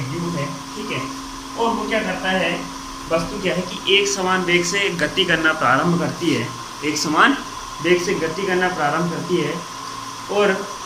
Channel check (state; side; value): identical; both; correlation 1.00